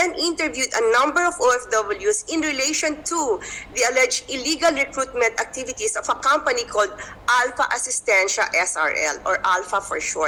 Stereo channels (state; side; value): identical; both; correlation 1.00